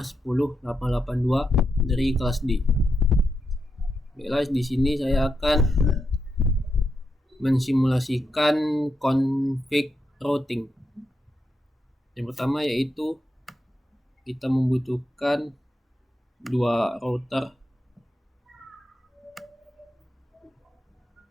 2235108882 dari kelas D. Baiklah, di sini saya akan mensimulasikan config routing. Yang pertama yaitu kita membutuhkan dua router,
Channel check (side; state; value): both; normal; correlation 0.84